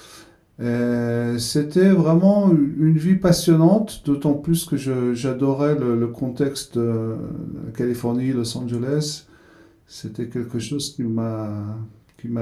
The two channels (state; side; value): identical; both; correlation 1.00